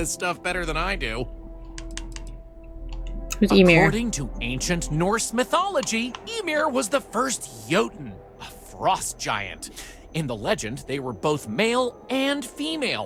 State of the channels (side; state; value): both; identical; correlation 1.00